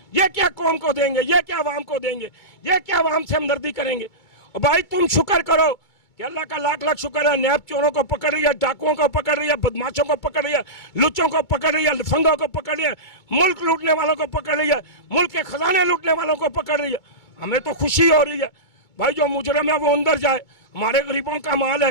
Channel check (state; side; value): late; right; 2.3 ms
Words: ये क्या कौम को देंगे, ये क्या आवाम को देंगे, ये क्या आवाम से हमदर्दी करेंगे। और भाई तुम शुक्र करो कि अल्लाह का लाख लाख शुक्र है, नैब चोरों को पकड़ रही है, डाकुओं को पकड़ रही है, बदमाशों को पकड़ रही है, लुच्चों को पकड़ रही है, लफंगों को पकड़ रही है, मुल्क लूटने वालों को पकड़ रही है, मुल्क के खजाने लूटने वालों को पकड़ रही है। हमें तो खुशी हो रही है भाई, जो मुजरिम है वो अंदर जाए। हमारे गरीबों का माल है,